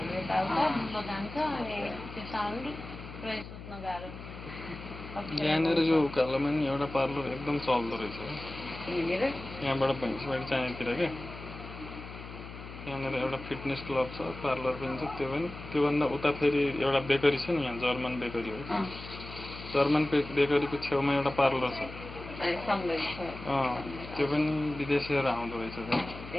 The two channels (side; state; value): left; noise; hum, 12 dB below the sound